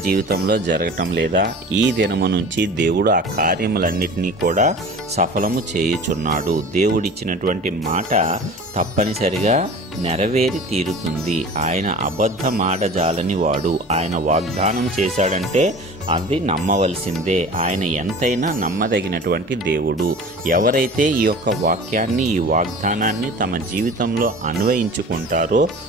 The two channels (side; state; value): both; normal; correlation 0.40